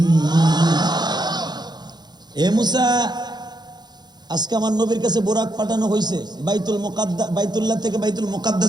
এ মুসা, আজকে আমার নবীর কাছে বোরাক পাঠানো হয়েছে, বাইতুল্লাহ থেকে বাইতুল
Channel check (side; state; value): left; late; 0.20 ms